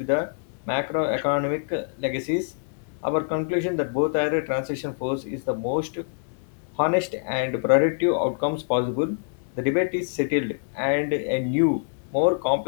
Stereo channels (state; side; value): silent; right; 61 dB below the other